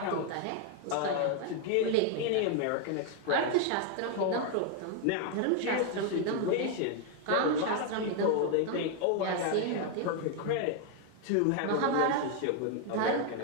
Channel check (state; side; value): different; both; correlation 0.01